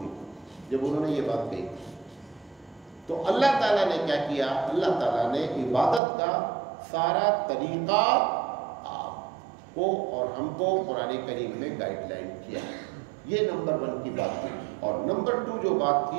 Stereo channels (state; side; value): drops out; left; at 6.0 s